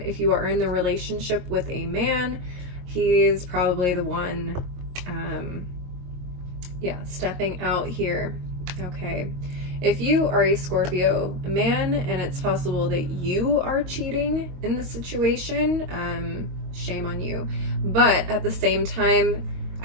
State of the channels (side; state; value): left; late; 22 ms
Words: if you are in the relationship with a man, he's probably the one stepping out here. Okay, if you are a Scorpio man and it's possible that you are cheating in the situation, shame on you. But at the same time,